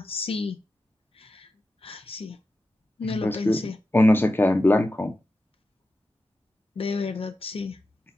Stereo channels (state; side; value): normal; both; correlation 0.91